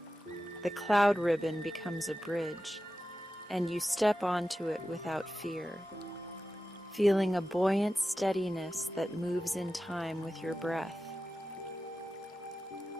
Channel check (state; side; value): normal; both; correlation 0.93